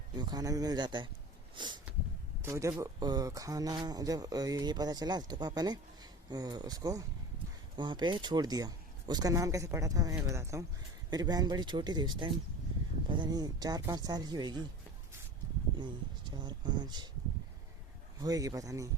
इनको खाना भी मिल जाता है। तो जब खाना जब ये पता चला तो पापा ने उसको वहाँ पे छोड़ दिया। उसका नाम कैसे पड़ा था मैं बताता हूँ। मेरी बहन बड़ी छोटी थी उस टाइम, पता नहीं 4-5 साल की होगी, नहीं 4-5 होएगी, पता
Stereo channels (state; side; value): normal; both; correlation 0.36